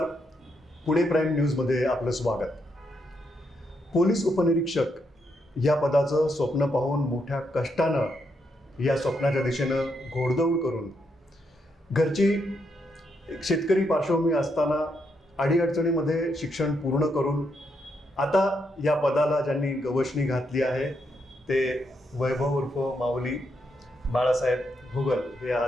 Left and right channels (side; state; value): both; normal; correlation 0.79